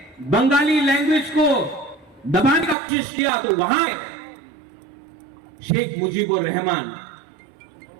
बंगाली लैंग्वेज को दबाने का कोशिश किया, तो वहां शेख मुजीबुर रहमान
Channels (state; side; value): drops out; left; at 2.8 s